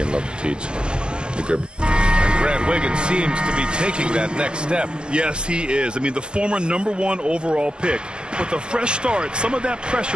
love to teach. And Grant Wiggins seems to be taking that next step. Yes, he is. I mean, the former #1 overall pick. With a fresh start, some of that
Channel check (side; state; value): left; late; 0.051 ms